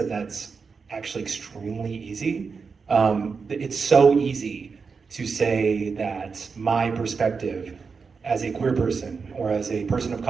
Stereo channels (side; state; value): left; quieter; 5.2 dB